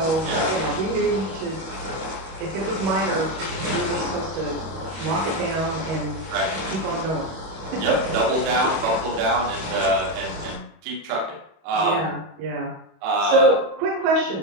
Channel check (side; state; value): left; late; 31 ms